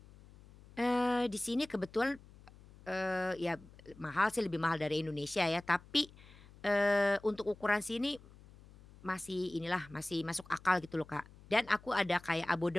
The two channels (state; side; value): noise; left; hum, 22 dB below the sound